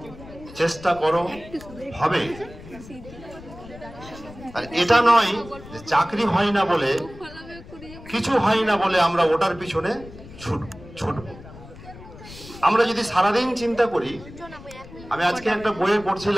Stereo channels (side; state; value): left; noise; rumble, 17 dB below the sound